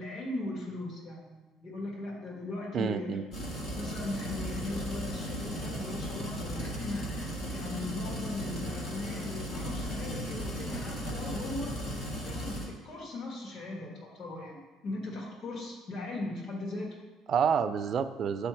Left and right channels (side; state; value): both; normal; correlation 0.65